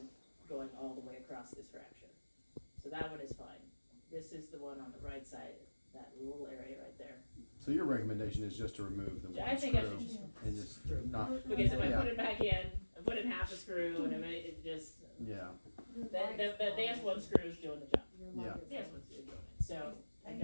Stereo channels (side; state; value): both; inverted; correlation -1.00